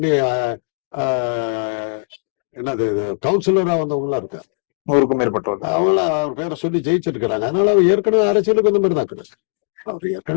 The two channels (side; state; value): right; silent; digital silence